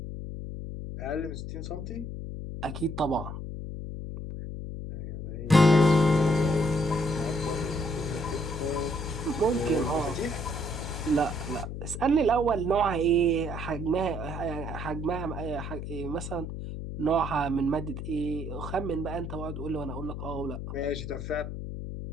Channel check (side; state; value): left; noise; hum, 6 dB below the sound